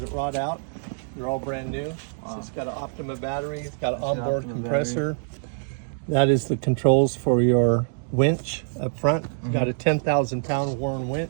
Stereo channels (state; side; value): silent; left; digital silence